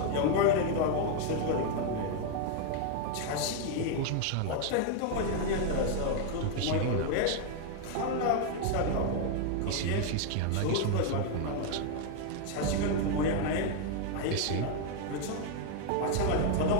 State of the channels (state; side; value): different; both; correlation 0.00